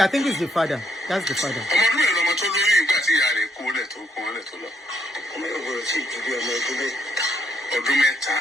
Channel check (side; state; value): both; normal; correlation 0.74